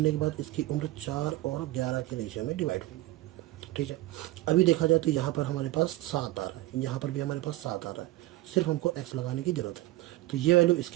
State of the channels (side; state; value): left; quieter; 17.3 dB